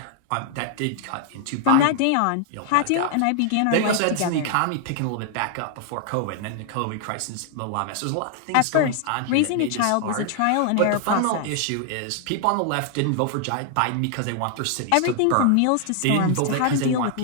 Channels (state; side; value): different; both; correlation 0.00